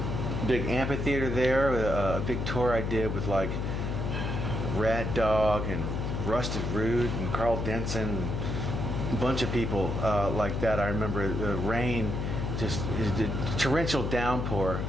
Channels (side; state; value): left; noise; hum, 2 dB below the sound